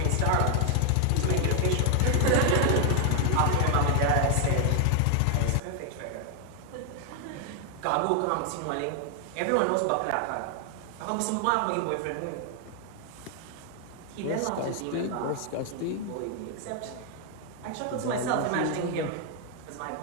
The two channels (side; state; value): both; different; correlation 0.00